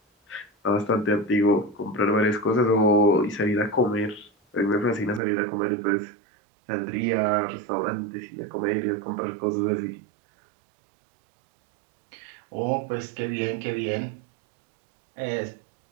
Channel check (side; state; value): left; drops out; at 5.2 s